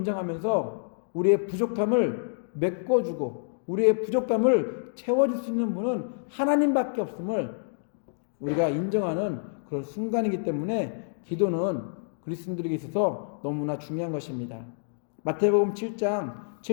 우리의 부족함을 메꿔주고 우리의 부족함을 채워줄 수 있는 분은 하나님밖에 없음을 우리가 인정하는 그런 순간이기 때문에 기도는 그리스도인들에게 있어서 너무나 중요한 것입니다. 마태복음 7장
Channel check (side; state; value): right; silent; digital silence